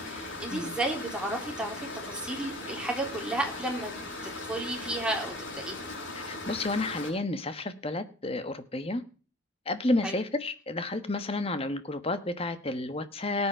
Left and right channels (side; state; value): both; normal; correlation 0.46